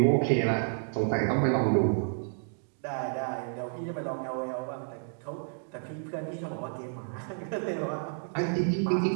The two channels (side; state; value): left; silent; digital silence